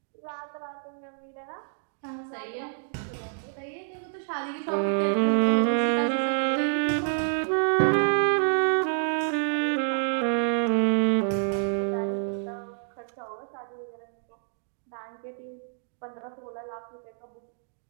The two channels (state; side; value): silent; left; digital silence